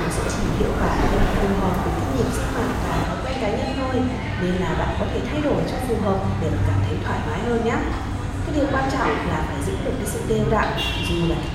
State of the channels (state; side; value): identical; both; correlation 1.00